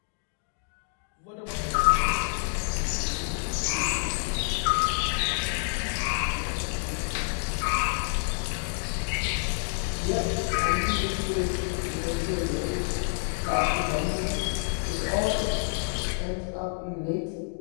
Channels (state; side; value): silent; right; digital silence